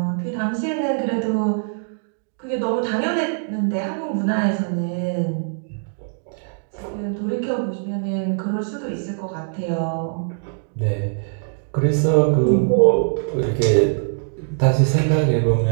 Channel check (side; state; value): left; silent; digital silence